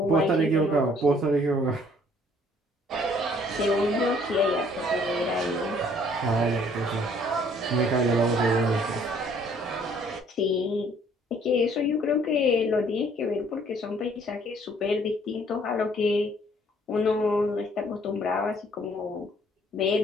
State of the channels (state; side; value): normal; both; correlation 0.60